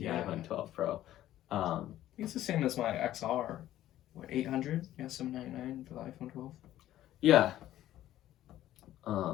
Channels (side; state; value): right; quieter; 13.4 dB